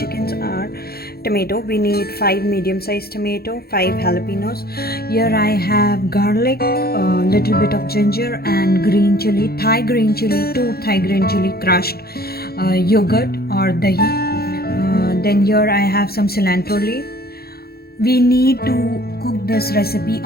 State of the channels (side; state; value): right; late; 0.45 ms